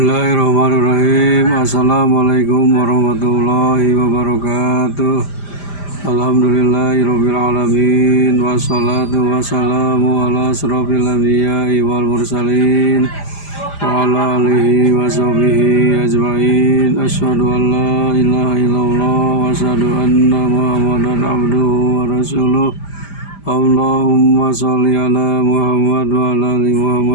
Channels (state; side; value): late; right; 5.0 ms